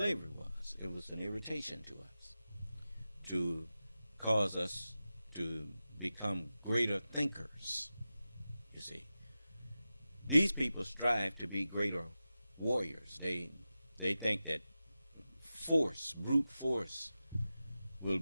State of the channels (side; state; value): both; inverted; correlation -0.93